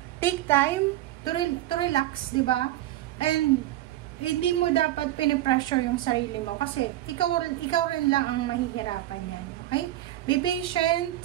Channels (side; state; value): left; quieter; 14.6 dB